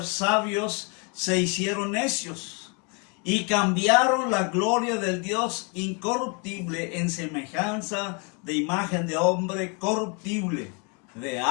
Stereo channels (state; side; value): quieter; right; 34.4 dB